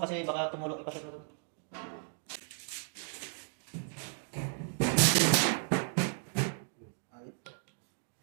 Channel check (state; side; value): silent; left; 55 dB below the other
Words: baka tumulok. Ipashot mo to.